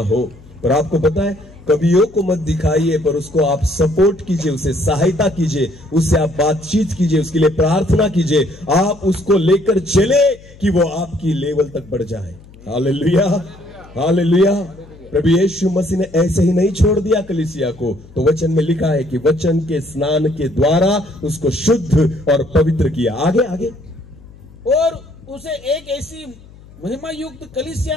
हो, पर आपको पता है, कमियों को मत दिखाइए, पर उसको आप सपोर्ट कीजिए, उसे सहायता कीजिए, उससे आप बातचीत कीजिए, उसके लिए प्रार्थना कीजिए, आप उसको लेकर चले कि वो आपकी लेवल तक बढ़ जाए। हालेलुया। हालेलुया। प्रभु यीशु मसीह ने ऐसे ही नहीं छोड़ दिया कलीसिया को, तो वचन में लिखा है कि वचन के स्नान के द्वारा उसको शुद्ध और पवित्र किया। आगे आगे, और उसे एक ऐसी महिमा युक्त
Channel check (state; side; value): noise; left; hum, 22 dB below the sound